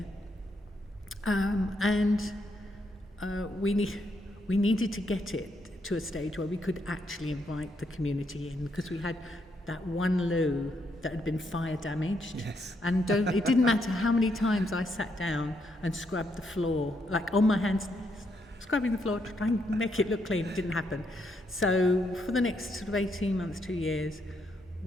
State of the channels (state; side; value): normal; both; correlation 0.77